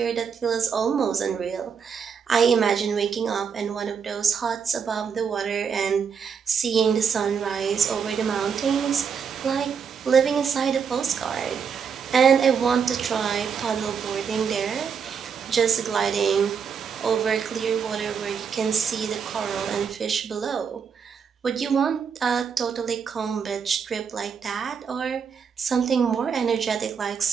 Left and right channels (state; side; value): quieter; left; 6.6 dB